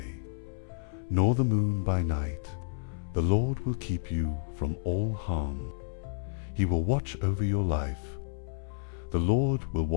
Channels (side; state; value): right; silent; 57 dB below the other